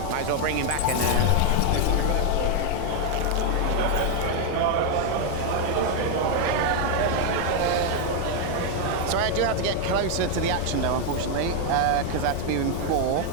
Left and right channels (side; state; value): both; different; correlation 0.01